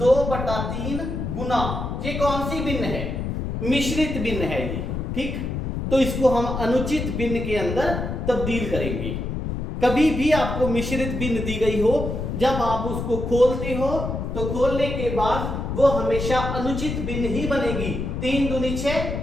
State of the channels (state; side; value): noise; left; rumble, 4 dB below the sound